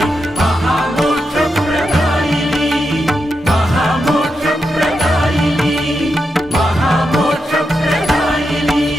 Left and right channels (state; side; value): normal; both; correlation 0.86